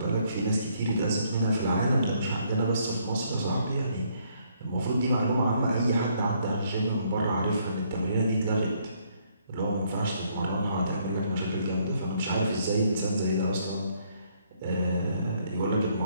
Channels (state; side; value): inverted; both; correlation -0.68